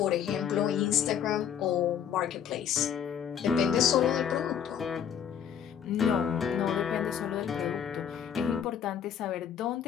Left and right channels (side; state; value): right; quieter; 8.6 dB